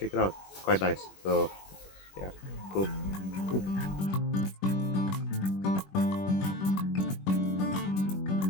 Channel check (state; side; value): late; right; 21 ms